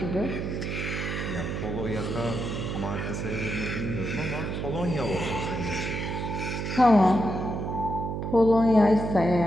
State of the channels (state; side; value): noise; right; hum, 3 dB below the sound